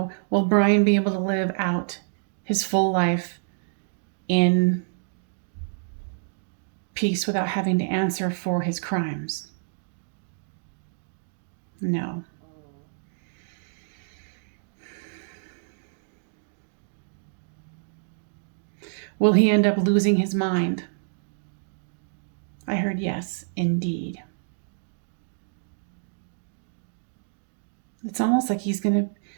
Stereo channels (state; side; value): silent; left; digital silence